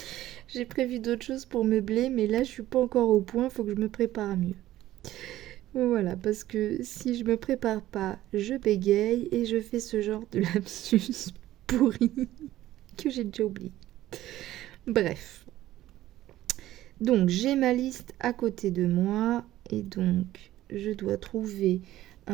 J'ai prévu d'autres choses pour meubler, mais là, je suis pas encore au point. Faut que je me prépare mieux. Voilà, parce que si je me prépare pas, je bégaye et je fais ce genre de lapsus pourri que j'ai déjà oublié. Bref. Donc, j'ai ma liste à côté de moi et donc, je dois trouver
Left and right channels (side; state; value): left; quieter; 14.5 dB